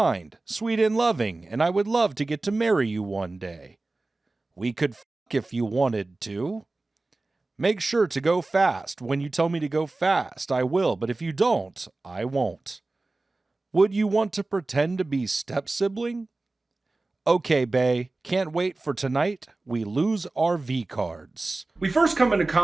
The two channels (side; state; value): left; quieter; 3.2 dB